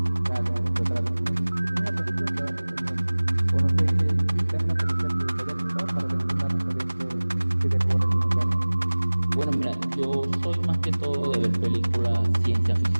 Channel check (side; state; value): both; inverted; correlation -1.00